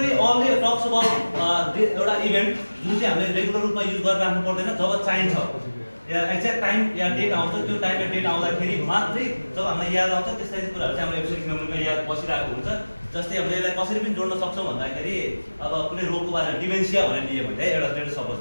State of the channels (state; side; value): inverted; both; correlation -1.00